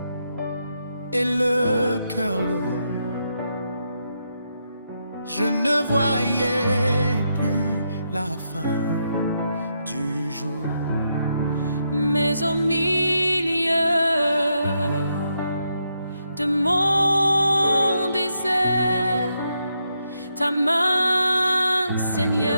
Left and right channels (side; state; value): both; inverted; correlation -0.81